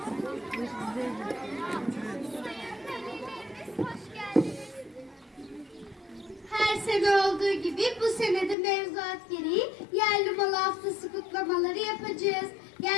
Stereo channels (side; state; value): right; drops out; at 8.6 s